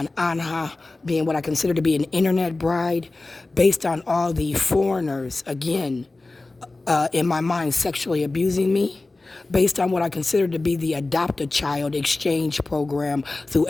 Anha being what I consider to be an internet bride, based on all the foreigners, again, in my mind, sexually abusing me, based on what I consider to be the adopt-a-child exchange program through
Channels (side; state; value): right; quieter; 3.2 dB